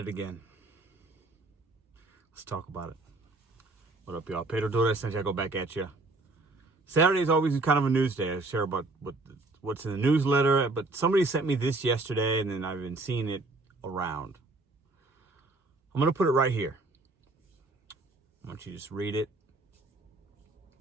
again. Let's talk about it. What up, y'all? Pedro DoorDash Santiago back at you. Saturday is always kind of a news day. I share about what's in the newsletter, but somebody sent me this yesterday, and then I've been seeing it around. I'm going to put it right here. I want you to just read it,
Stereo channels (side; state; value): left; quieter; 3.1 dB